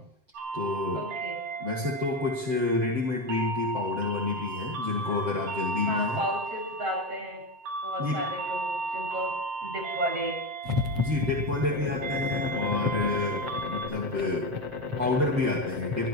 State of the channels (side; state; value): left; late; 7.7 ms